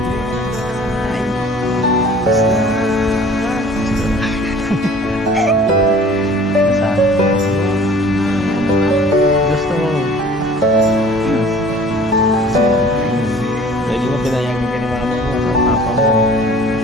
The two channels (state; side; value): normal; both; correlation 0.49